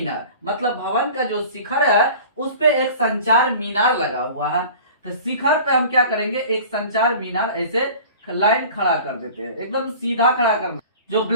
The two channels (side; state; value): both; inverted; correlation -0.42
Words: मतलब भवन का जो शिखर है उस पे एक संचार मीनार लगा हुआ है। तो शिखर पे हम क्या करेंगे, एक संचार मीनार ऐसे लाइन खड़ा कर देते हैं, एकदम सीधा खड़ा करना। जो